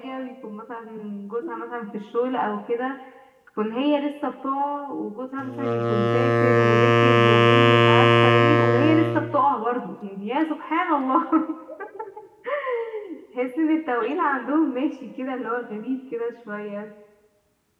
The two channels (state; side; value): identical; both; correlation 1.00